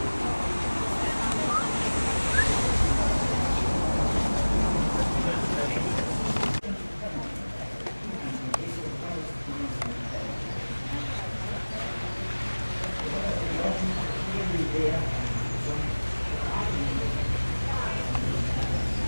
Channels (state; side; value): inverted; both; correlation -1.00